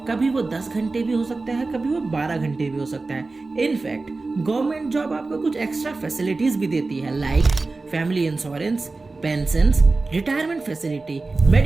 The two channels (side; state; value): left; quieter; 3.6 dB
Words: कभी वो 10 घंटे भी हो सकता है, कभी वो 12 घंटे भी हो सकता है। इनफैक्ट गवर्नमेंट जॉब आपको कुछ एक्स्ट्रा फैसिलिटीज भी देती है like family insurance, pension, retirement facility,